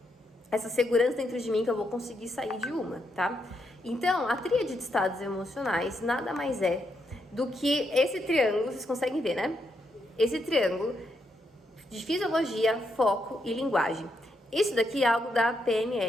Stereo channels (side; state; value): both; normal; correlation 0.80